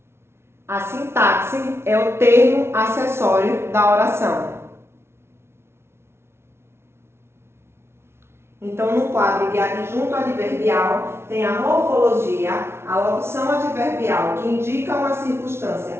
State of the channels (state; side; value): late; left; 0.12 ms